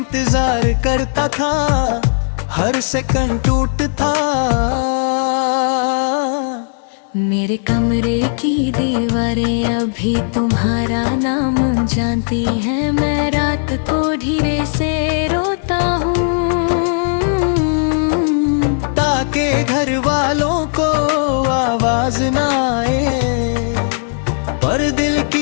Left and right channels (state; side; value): silent; right; digital silence